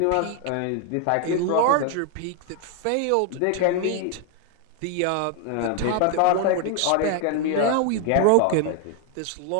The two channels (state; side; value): different; both; correlation 0.00